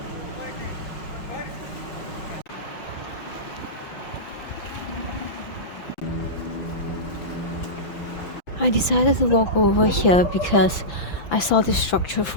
I decided to walk over here because I saw this structure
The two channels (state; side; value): late; right; 5.9 ms